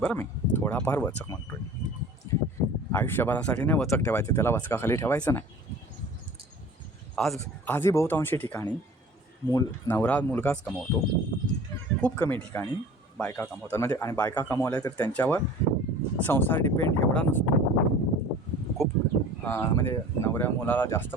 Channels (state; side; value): normal; both; correlation 0.43